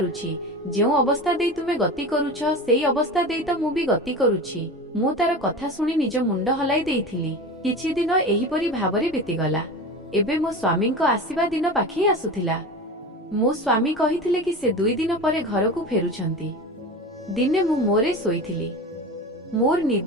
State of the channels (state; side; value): normal; both; correlation 0.29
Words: ଯେଉଁ ଅବସ୍ଥା ଦେଇ ତୁମେ ଗତି କରୁଛ ସେଇ ଅବସ୍ଥା ଦେଇ ତ ମୁଁ ବି ଗତି କରୁଛି। ମୁଁ ତାର କଥା ଶୁଣି ନିଜ ମୁଣ୍ଡ ହଲାଇ ଦେଇଥିଲି। କିଛି ଦିନ ଏହିପରି ଭାବରେ ବିତିଗଲା। ଏବେ ମୋ ସ୍ୱାମୀଙ୍କ ଆସିବା ଦିନ ପାଖେଇ ଆସୁଥିଲା। ମୋ ସ୍ୱାମୀ କହିଥିଲେ କି ସେ 2 ଦିନ ପରେ ଘରକୁ ଫେରୁଛନ୍ତି। ଦିନେ ମୁଁ ମୋରେ ଶୋଇଥିଲି। ମୋର